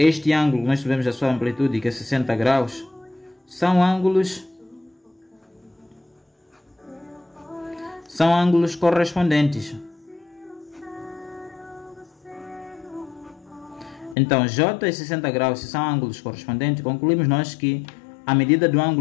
ângulo, nós sabemos a sua amplitude, que é 60 graus, são ângulos correspondentes. Então, J e 60 graus, se são ângulos correspondentes, concluímos nós que a medida do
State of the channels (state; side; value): drops out; right; at 14.2 s